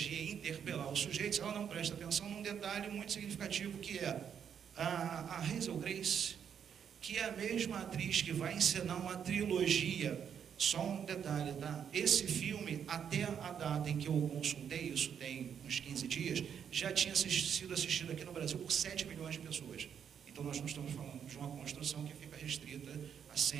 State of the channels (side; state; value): left; quieter; 8.1 dB